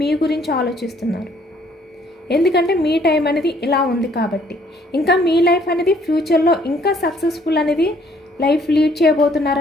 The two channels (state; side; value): normal; both; correlation 0.63